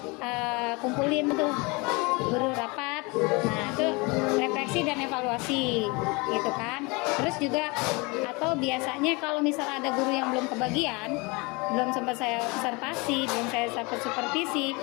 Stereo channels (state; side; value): quieter; right; 27.3 dB